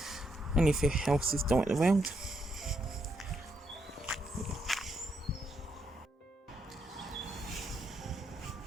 Only a few houses dotted around.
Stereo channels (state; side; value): normal; both; correlation 0.78